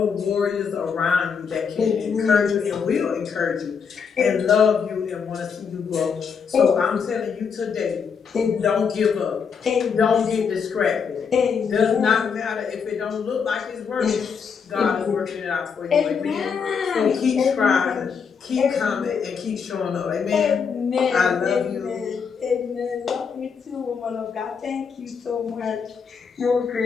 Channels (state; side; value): quieter; right; 6.2 dB